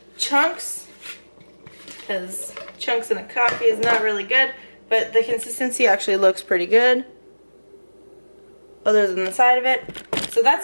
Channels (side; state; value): both; inverted; correlation -1.00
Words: chunks, because chunks in a coffee is not really good, but the consistency actually looks pretty good other than the side of it. So that's